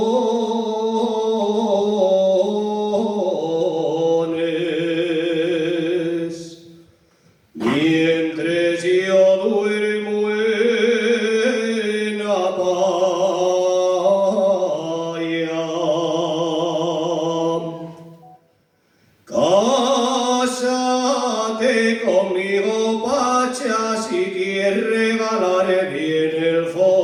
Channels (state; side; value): identical; both; correlation 1.00